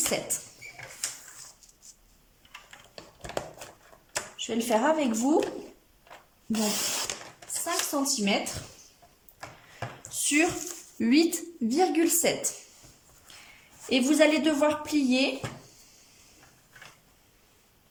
Je vais le faire avec vous. Donc 5 cm sur 8,7. Et vous allez devoir plier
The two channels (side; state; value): both; identical; correlation 1.00